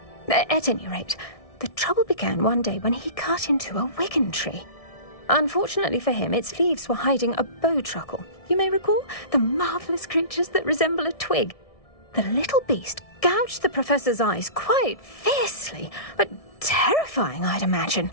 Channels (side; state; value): right; late; 1.6 ms